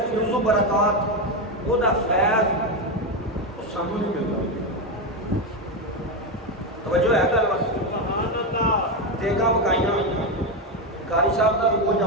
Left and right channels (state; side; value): normal; both; correlation 0.10